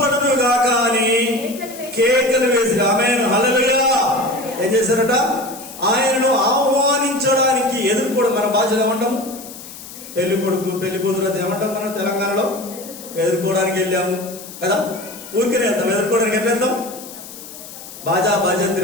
గాక అని కేకలు వేసి ఆమేన్ హల్లెలూయా ఏం చేశారట? ఆయనను ఆహ్వానించడానికి ఎదుర్కోవడం. మన భాషలో ఏమంటాము? పెళ్లి కొడుకు పెళ్లి కూతురు అది ఏమంటాం మనం తెలంగాణలో? ఎదుర్కోవడానికి వెళ్ళాము కదా. ఊరికనే వెళ్తాం. ఎదుర్కోవడానికి ఎట్లా వెళ్తాం? బాజా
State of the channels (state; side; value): noise; left; hiss, 15 dB below the sound